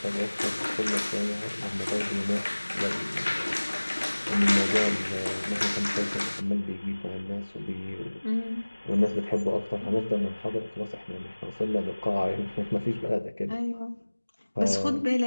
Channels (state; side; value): inverted; both; correlation -1.00